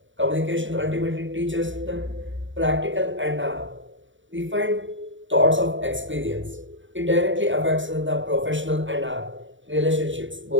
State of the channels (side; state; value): left; late; 0.55 ms